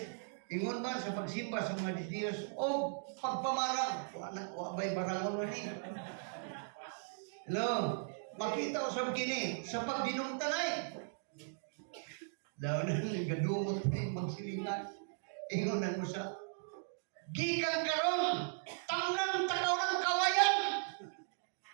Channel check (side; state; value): left; silent; digital silence